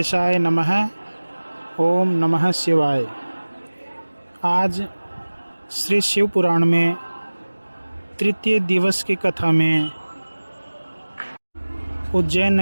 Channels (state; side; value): inverted; both; correlation -1.00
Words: नमः। ओम नमः शिवाय। आज श्री शिव पुराण में तृतीय दिवस की कथा में उज्जैन